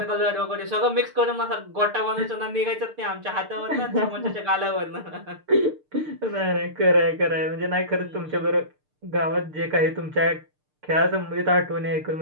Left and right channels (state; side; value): late; left; 6.6 ms